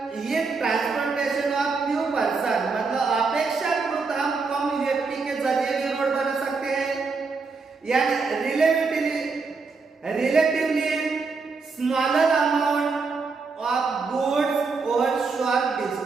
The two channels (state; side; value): quieter; left; 4.5 dB